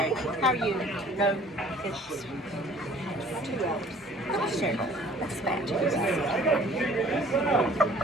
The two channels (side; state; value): both; normal; correlation 0.53